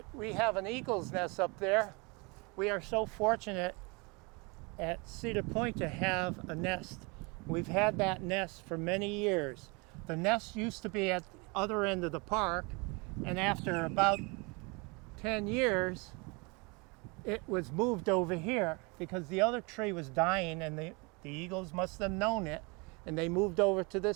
we have an eagle's nest up there. We are so fortunate at Cedar Point to have a nest. We've had that nest for many years. The nest used to be at the other end of the park, and after about 10 years, it was moved over here because the other tree was dying, and the eagles must have known it, and they moved over to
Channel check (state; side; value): quieter; left; 29.1 dB